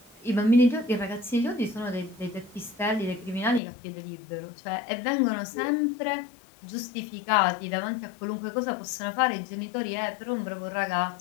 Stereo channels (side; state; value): right; drops out; at 3.6 s